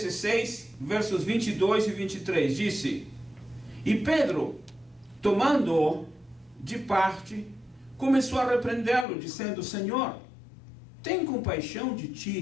versos 22 e 23, disse: E Pedro, tomando-o de parte, começou a repreendê-lo, dizendo: Senhor, tem compaixão de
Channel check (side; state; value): right; drops out; at 9.1 s